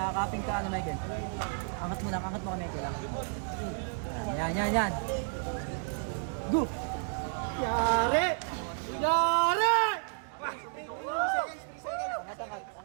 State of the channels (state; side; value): silent; left; 56 dB below the other